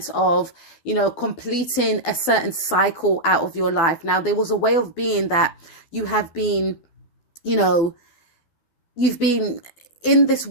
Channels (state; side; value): late; right; 12 ms